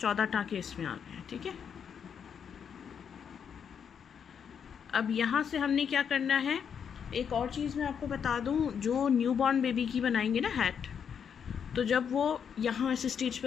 14 टाँके इसमें आ गए। ठीक है, अब यहाँ से हमने क्या करना है, एक और चीज़ मैं आपको बता दूँ, जो न्यूबॉर्न बेबी की बनाएंगे ना हैट, तो जब वो यहाँ इस स्टेज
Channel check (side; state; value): right; quieter; 7.5 dB